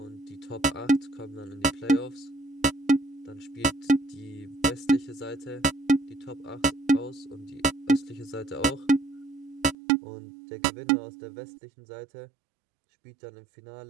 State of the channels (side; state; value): left; drops out; at 9.8 s